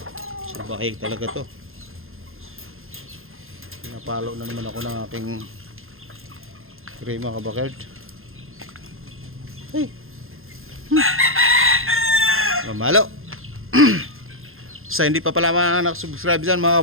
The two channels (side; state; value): left; late; 0.60 ms